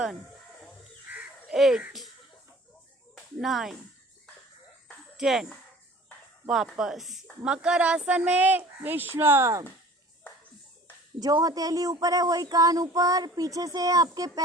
8 9 10। वापस मकर आसन में विश्राम। जो हथेली ऊपर है वही कान ऊपर, पीछे से आपके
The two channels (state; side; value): normal; both; correlation 0.47